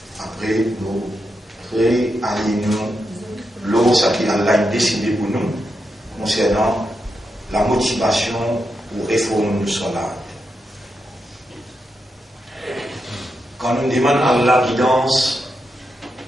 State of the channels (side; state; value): both; normal; correlation 0.85